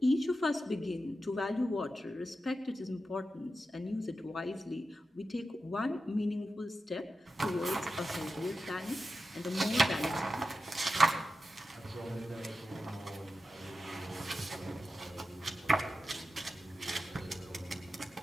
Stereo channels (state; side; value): normal; both; correlation 0.91